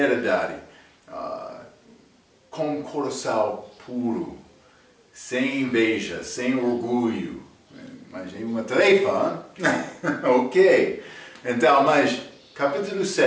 com coração puro, sem inveja, sem orgulho. Mas é uma tarefa, ok? Então, mas capítulo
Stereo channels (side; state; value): both; identical; correlation 1.00